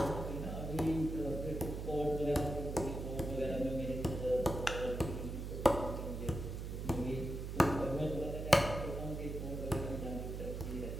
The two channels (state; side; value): noise; right; hum, 5 dB below the sound